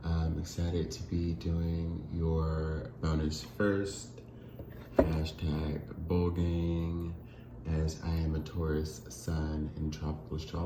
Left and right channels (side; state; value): both; identical; correlation 1.00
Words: I'm excited to be doing your bonus first. Hashtag Bulgang, as I am a Taurus Sun in tropical